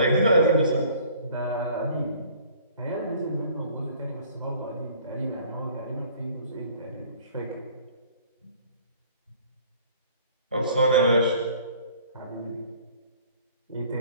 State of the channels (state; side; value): inverted; both; correlation -0.53